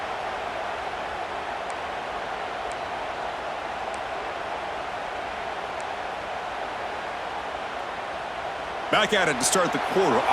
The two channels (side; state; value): both; identical; correlation 1.00